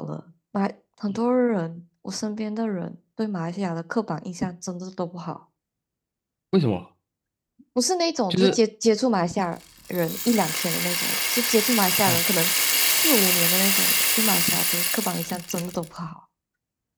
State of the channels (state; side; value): identical; both; correlation 1.00